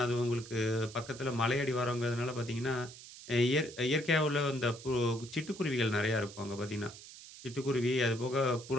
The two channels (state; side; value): noise; right; hiss, 16 dB below the sound